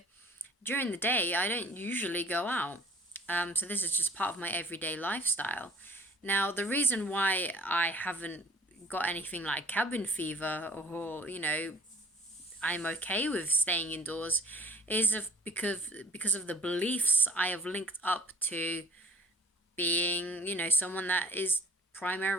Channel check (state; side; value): normal; both; correlation 0.49